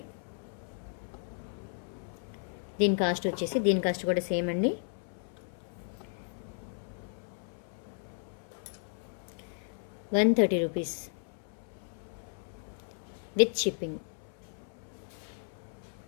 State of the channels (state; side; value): silent; right; 55 dB below the other